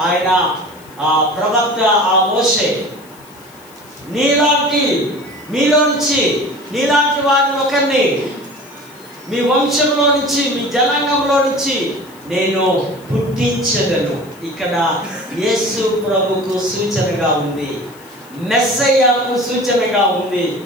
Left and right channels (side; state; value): left; noise; hiss, 25 dB below the sound